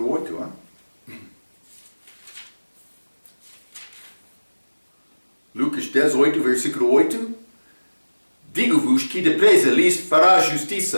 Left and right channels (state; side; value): inverted; both; correlation -1.00